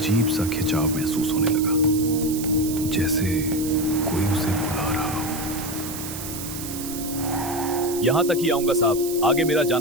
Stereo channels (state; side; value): noise; right; hiss, 9 dB below the sound